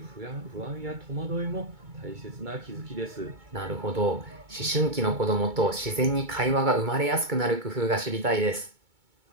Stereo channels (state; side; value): late; left; 2.2 ms